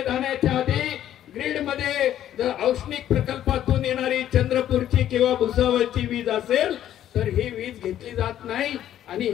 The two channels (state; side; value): quieter; right; 11.5 dB